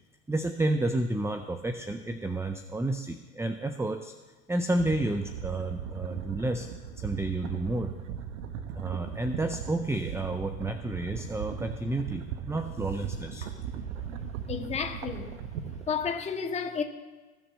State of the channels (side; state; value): both; normal; correlation 0.67